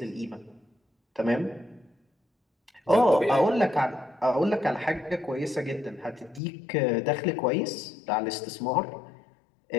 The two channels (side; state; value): right; drops out; at 6.4 s